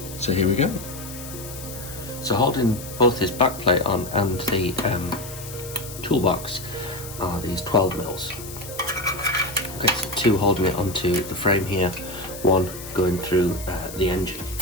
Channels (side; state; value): left; noise; hiss, 13 dB below the sound